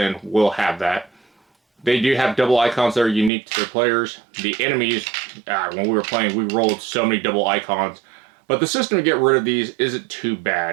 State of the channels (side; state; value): left; drops out; at 3.3 s